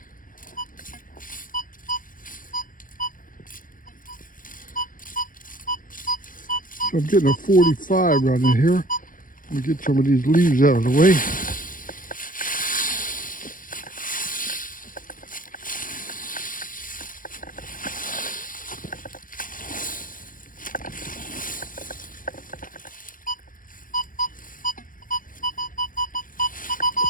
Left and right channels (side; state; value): right; late; 0.40 ms